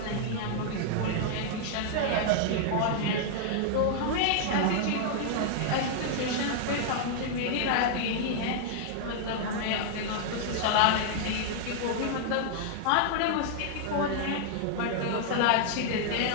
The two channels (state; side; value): different; both; correlation -0.01